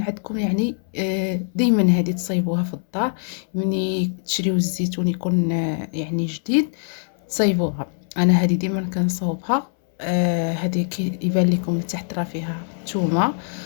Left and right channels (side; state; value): right; silent; 63 dB below the other